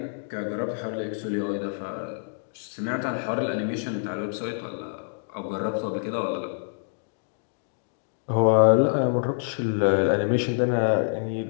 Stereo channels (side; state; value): right; silent; digital silence